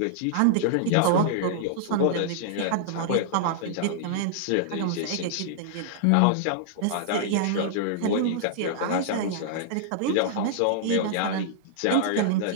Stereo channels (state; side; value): different; both; correlation -0.01